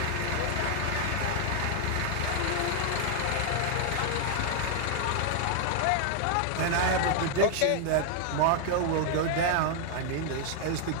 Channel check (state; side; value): different; both; correlation 0.00